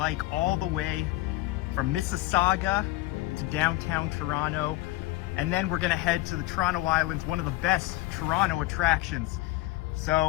all the way from Mississauga to downtown Toronto, and then we're gonna head to the Toronto Islands, one of the best Toronto attractions.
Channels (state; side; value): quieter; right; 18.1 dB